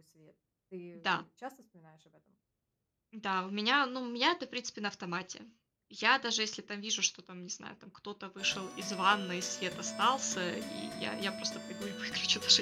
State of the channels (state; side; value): identical; both; correlation 1.00